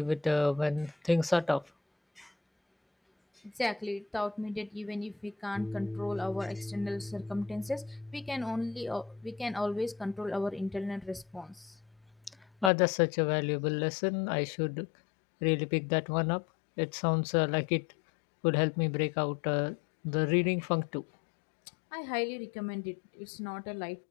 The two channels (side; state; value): right; drops out; at 12.7 s